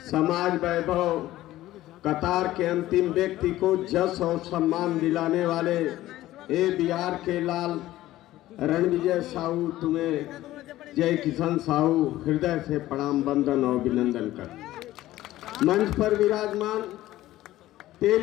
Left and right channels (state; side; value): quieter; right; 15.4 dB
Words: समाज वैभव, कतार के अंतिम व्यक्ति को जस और सम्मान दिलाने वाले ए बिहार के लाल रणविजय साहू, तुम्हें जय किशन साहू हृदय से प्रणाम, वंदन और अभिनंदन कर। मंच पर विराजमान